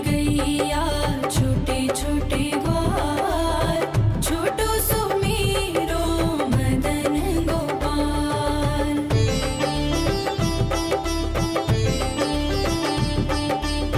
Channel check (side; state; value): both; identical; correlation 1.00